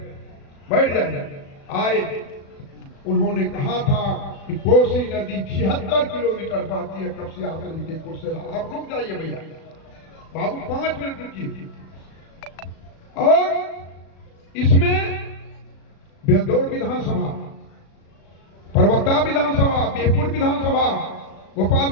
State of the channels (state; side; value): late; right; 36 ms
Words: बैठ जाइए। आए, उन्होंने कहा था कि कोसी नदी 76 किलोमीटर बहती है कपसिया से लेके कुर्सेला। आप रुक जाइए भैया, बाबू 5 मिनट रुकिए। और इसमें बेलदौर विधानसभा, परबत्ता विधानसभा, बिहपुर विधानसभा,